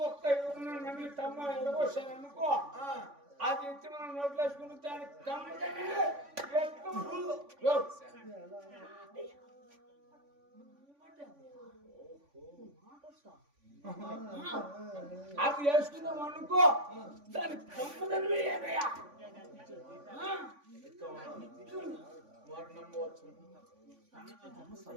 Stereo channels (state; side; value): late; left; 3.5 ms